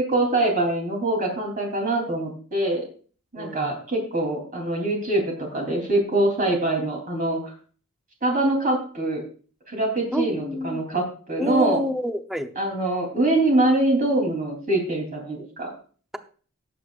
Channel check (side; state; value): both; normal; correlation 0.34